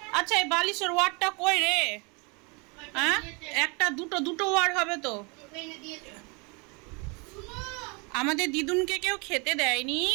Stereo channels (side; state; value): left; quieter; 30.7 dB